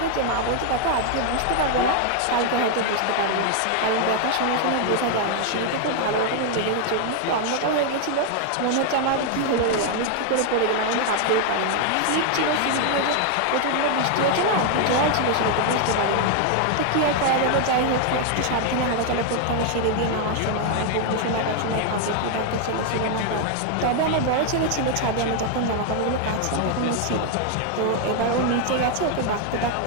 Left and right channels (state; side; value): different; both; correlation 0.00